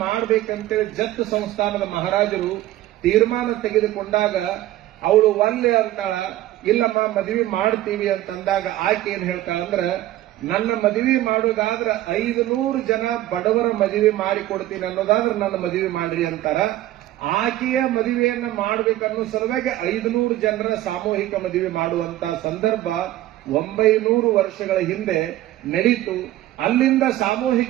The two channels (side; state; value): left; quieter; 14.8 dB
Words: ಮಾಡಬೇಕಂತೇಳಿ ಜತ್ ಸಂಸ್ಥಾನದ ಮಹಾರಾಜರು ತೀರ್ಮಾನ ತೆಗೆದುಕೊಂಡಾಗ ಅವಳು ಒಲ್ಲೆ ಅಂತಾಳ, ಇಲ್ಲಮ್ಮ ಮದುವೆ ಮಾಡ್ತೀವಿ ಅಂತಂದಾಗ ಆಕೆ ಏನ್ ಹೇಳ್ತಾಳಂದ್ರ, ನನ್ನ ಮದುವೆ ಮಾಡೋದಾದ್ರೆ 500 ಜನ ಬಡವರ ಮದುವೆ ಮಾಡಿಕೊಡ್ತೀನಿ ಅನ್ನೋದಾದ್ರೆ ನನ್ನ ಮದುವೆ ಮಾಡ್ರಿ ಅಂತಾರ. ಆಕೆಯ ಮದುವೆಯನ್ನ ಮಾಡಬೇಕನ್ನೋ ಸಲುವಾಗಿ 500 ಜನರ ಸಾಮೂಹಿಕ ಮದುವೆ ಮಾಡುವಂತ ಸಂದರ್ಭ 900 ವರ್ಷಗಳ ಹಿಂದೆ ನಡೀತು. ಅಲ್ಲಿಂದ